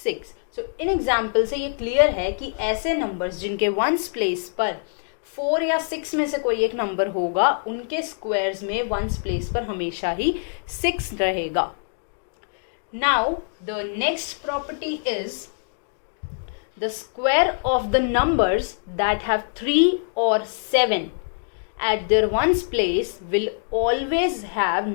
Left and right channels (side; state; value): right; silent; digital silence